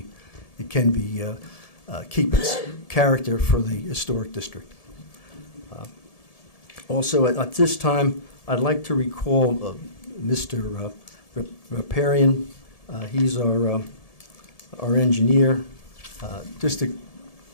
keep its character for the historic district. Also, at this time, I'd like to recall Mr. Riparian. He's our engineer. Just to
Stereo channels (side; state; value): right; late; 1.7 ms